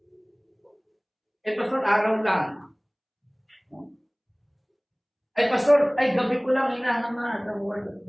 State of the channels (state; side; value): identical; both; correlation 1.00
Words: Pastor, araw lang. Pastor, gabi ko lang hinahangad ang word of